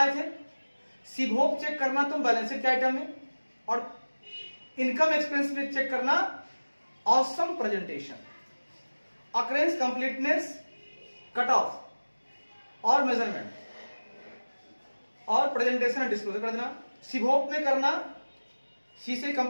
थे, सिभोग चेक करना तुम बैलेंस शीट के आइटम में, और इनकम एक्सपेंस में चेक करना awesome presentation, occurrence completeness, cut off और मेजरमेंट, और प्रेजेंटेशन और डिस्क्लोजर कर देना। सिभोग में करना सी से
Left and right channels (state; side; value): inverted; both; correlation -1.00